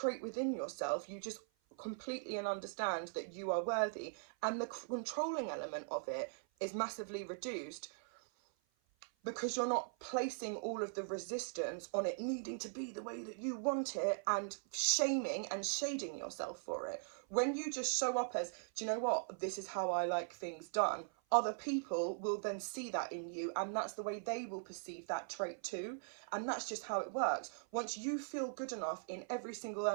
within yourself, you just completely understand that you are worthy. And the controlling element of it is massively reduced, because you're not placing all of the resistance on it needing to be the way that you want it and shaming and shading yourself for it. When you just show up as, do you know what, this is how I like things done, other people will then see that in you, and that's the way they will perceive that trait too. And that's just how it works. Once you feel good enough in every single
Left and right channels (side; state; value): left; silent; 51 dB below the other